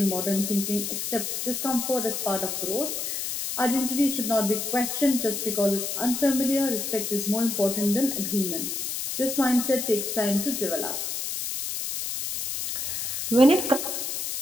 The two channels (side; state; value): left; noise; hiss, 3 dB below the sound